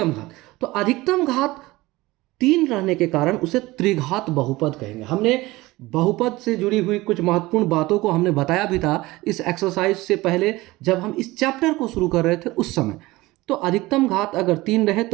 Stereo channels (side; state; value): left; quieter; 19.8 dB